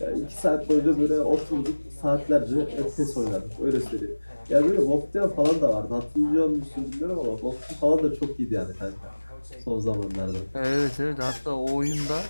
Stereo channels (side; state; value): both; inverted; correlation -1.00